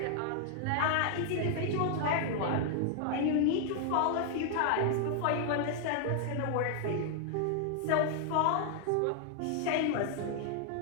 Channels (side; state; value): both; different; correlation 0.00